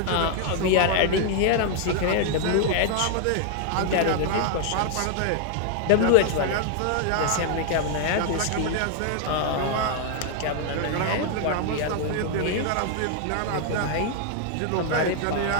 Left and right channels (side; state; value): both; different; correlation 0.00